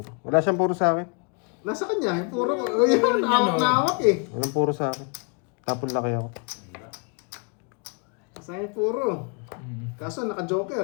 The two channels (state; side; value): quieter; right; 37.4 dB